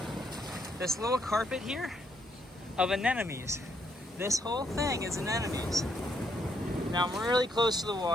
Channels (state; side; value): normal; both; correlation 0.74